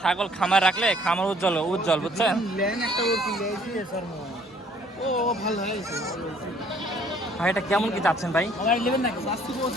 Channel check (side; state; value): both; normal; correlation 0.59